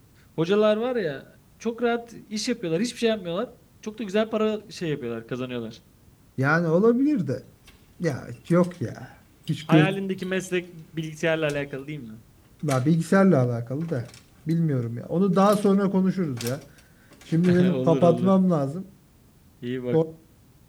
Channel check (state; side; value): identical; both; correlation 1.00